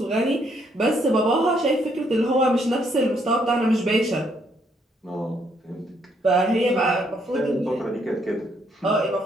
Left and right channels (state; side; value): normal; both; correlation 0.71